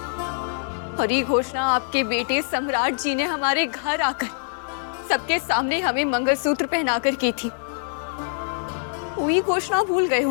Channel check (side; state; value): right; silent; digital silence